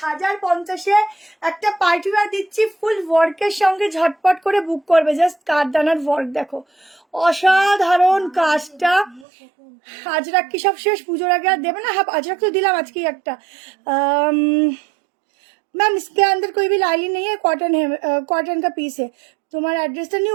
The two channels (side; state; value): left; drops out; at 9.2 s